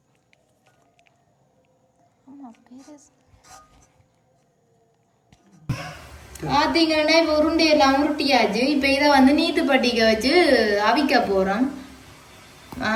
பார்த்தீங்கன்னா இப்போ உருண்டையெல்லாம் உருட்டியாச்சு. இப்போ இதை வந்து நீத்து பட்டிக்க வச்சு அவிக்க போகிறோம்.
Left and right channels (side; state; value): both; identical; correlation 1.00